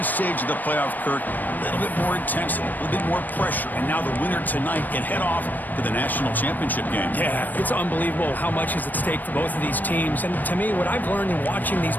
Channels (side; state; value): right; late; 0.087 ms